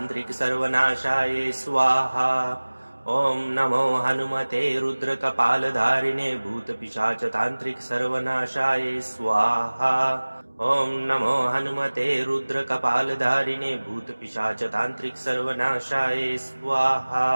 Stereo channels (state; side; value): inverted; both; correlation -1.00